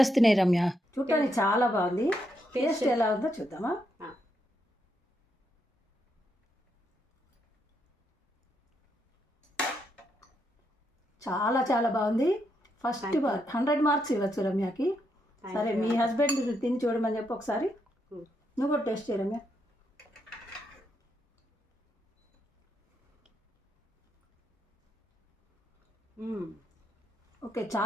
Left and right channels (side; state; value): both; normal; correlation 0.79